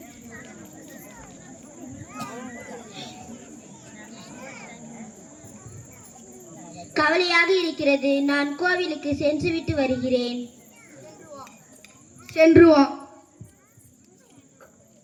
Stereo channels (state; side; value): identical; both; correlation 1.00